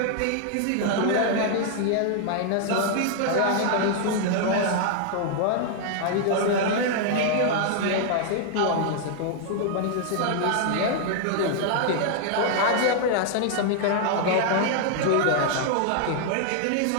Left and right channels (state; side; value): different; both; correlation 0.00